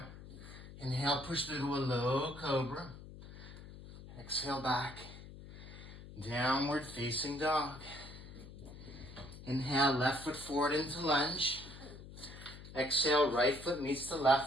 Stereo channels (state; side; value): noise; left; hum, 15 dB below the sound